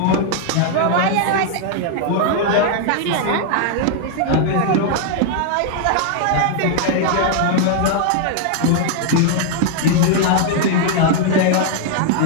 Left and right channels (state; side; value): different; both; correlation 0.00